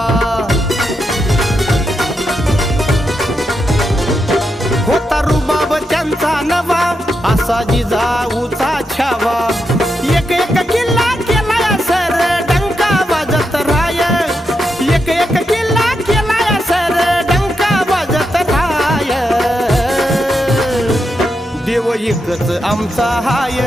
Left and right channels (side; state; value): both; normal; correlation 0.85